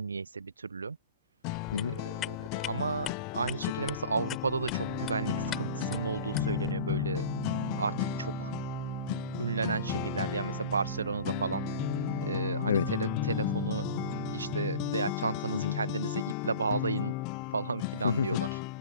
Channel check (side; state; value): both; inverted; correlation -0.38